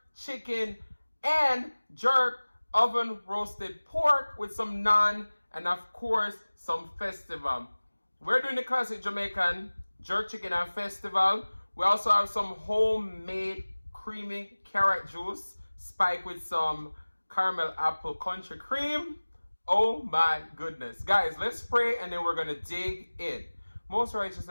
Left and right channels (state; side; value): inverted; both; correlation -1.00